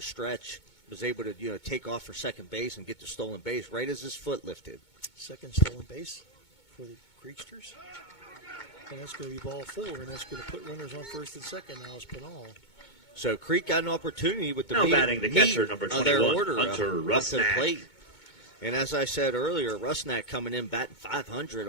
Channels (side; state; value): right; late; 2.2 ms